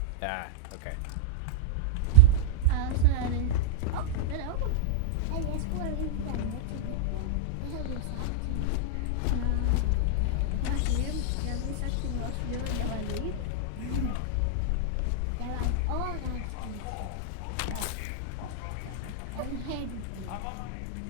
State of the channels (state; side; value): different; both; correlation -0.01